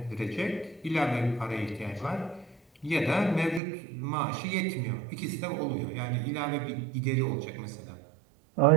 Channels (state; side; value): drops out; left; at 3.6 s